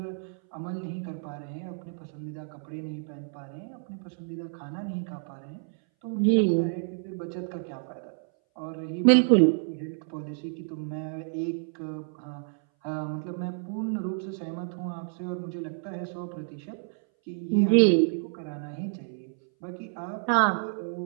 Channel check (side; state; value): left; silent; 58 dB below the other